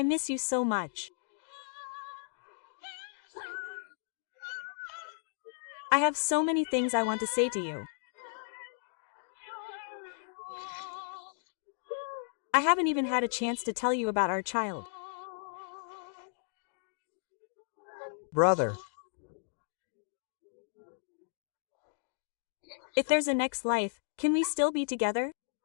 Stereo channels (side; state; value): right; silent; digital silence